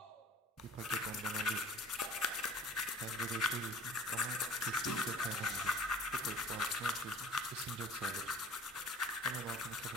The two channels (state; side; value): normal; both; correlation 0.48